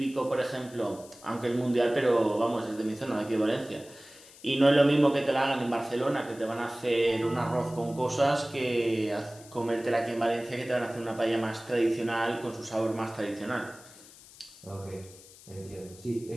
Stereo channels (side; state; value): left; noise; hiss, 21 dB below the sound